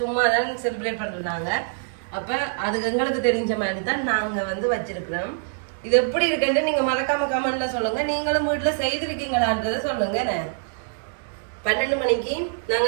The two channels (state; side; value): silent; left; digital silence